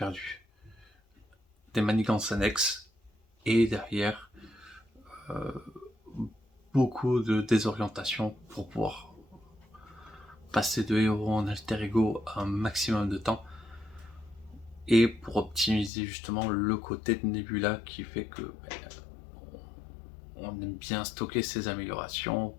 des manigances annexes, et derrière beaucoup de désorientation pour pouvoir passer de héros en alter ego un maximum de temps, et pour optimiser justement le côté de Nebula qui fait que on aime bien stocker ses améliorations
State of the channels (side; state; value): right; drops out; at 15.9 s